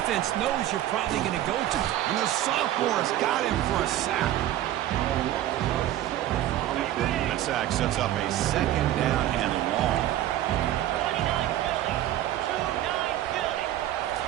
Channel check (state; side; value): quieter; left; 13.2 dB